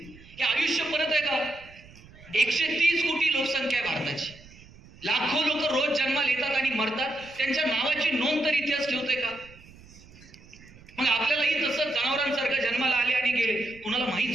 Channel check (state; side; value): noise; right; rumble, 22 dB below the sound